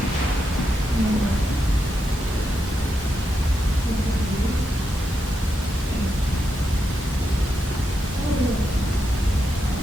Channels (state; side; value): normal; both; correlation 0.85